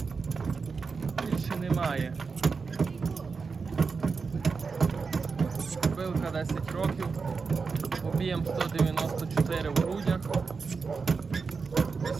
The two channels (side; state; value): left; quieter; 4.9 dB